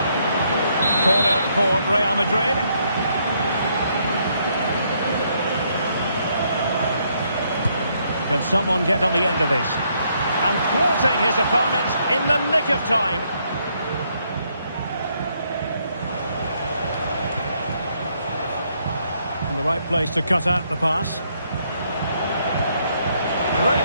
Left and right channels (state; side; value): inverted; both; correlation -0.72